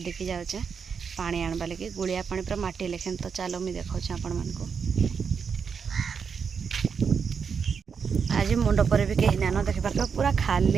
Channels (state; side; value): quieter; left; 6.3 dB